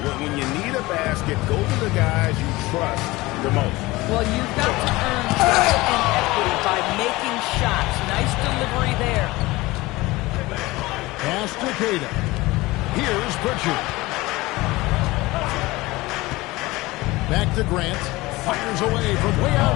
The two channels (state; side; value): quieter; right; 20.4 dB